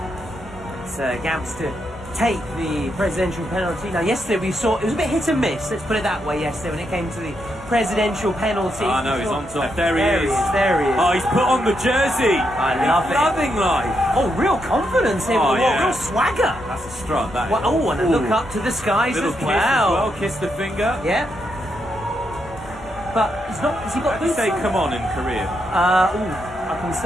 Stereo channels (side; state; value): both; normal; correlation 0.81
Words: It's Gamps to take the presidential penalty. Now, yesterday we saw it was a bit hit and miss. Let's put it that way. Yesterday, when it came to the presidential penalty. Oh no, he's on top. There he is. There he is. Oh, he's put on the jersey. I love he's it. Loving life. Oh, real confidence here. Oh, yeah. Real swagger. That's a strut. That is. Well, oh, and a look up to the skies Little as kiss well. as well. Kiss the finger. Yeah. But he's not. Has he got How do you boots say on? "come on" in Korean? I can